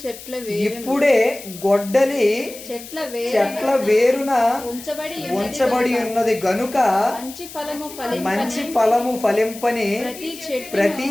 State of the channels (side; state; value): left; noise; hiss, 15 dB below the sound